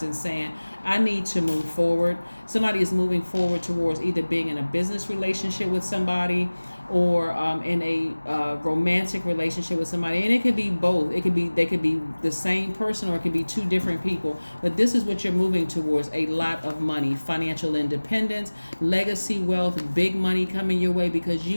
and saying, I need to move forward. Somebody is moving forward towards either being in a business relationship with somebody, or in a romantic relationship with somebody, and it could be both. They could be the same person, or it could be two different people. But this is what you're moving towards: a lot of money, financial independence, legacy wealth, big money coming your way because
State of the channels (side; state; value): both; inverted; correlation -1.00